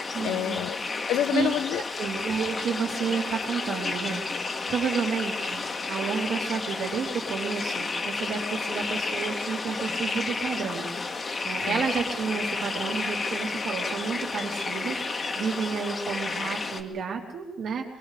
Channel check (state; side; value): normal; both; correlation 0.76